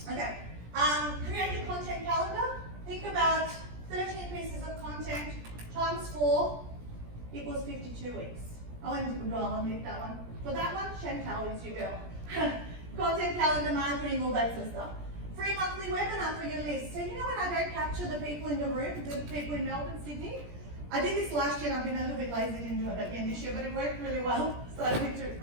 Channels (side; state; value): left; late; 17 ms